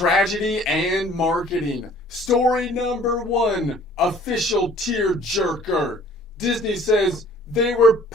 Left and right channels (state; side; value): normal; both; correlation 0.54